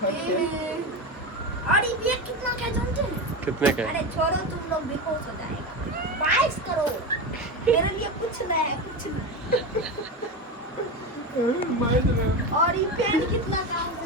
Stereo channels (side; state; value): both; normal; correlation 0.20